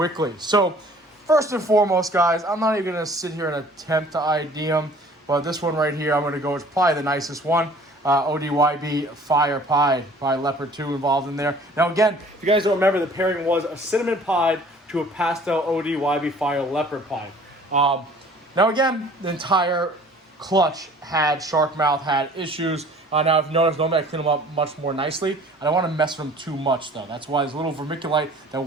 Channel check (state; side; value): normal; both; correlation 0.51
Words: So, first and foremost, guys, I'm not even going to sit here and attempt to ID them. But this one right here, I'm going to go. It's probably the nicest one. ODYB Fire Pied, probably Leopard 2 involved in there. Now again, if you guys don't remember, the pairing was a Cinnamon Pied to a Pastel ODYB Fire Leopard Pied. Now again, the entire clutch had shark mouth, had issues. Now if you notice, normally I clean them up much more nicely. I don't want to mess with them too much though. That's why there's a little vermiculite that